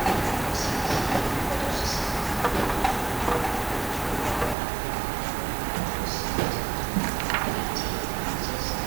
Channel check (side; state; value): left; drops out; at 4.5 s